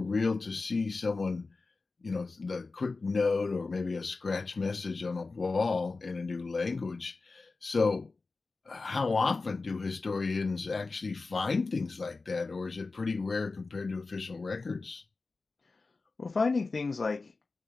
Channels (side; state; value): right; quieter; 3.8 dB